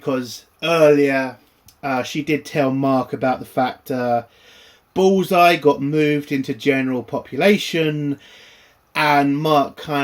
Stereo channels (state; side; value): identical; both; correlation 1.00